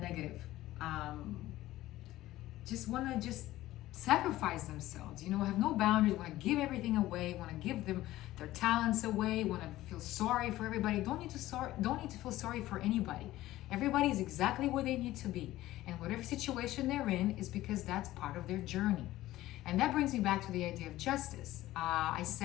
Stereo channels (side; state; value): right; quieter; 15.8 dB